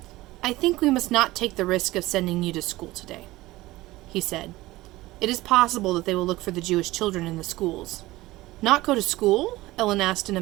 I think we must not take the risk of sending you to school today, he said. It is possible that they will look for the Jewish children in the schools. Not go to school? Ellen asked in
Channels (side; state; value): left; quieter; 18.5 dB